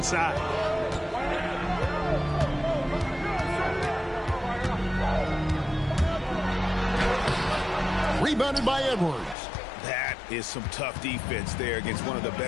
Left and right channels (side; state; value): right; drops out; at 9.3 s